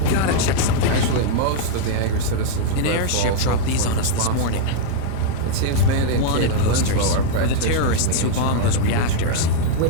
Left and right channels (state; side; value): different; both; correlation -0.01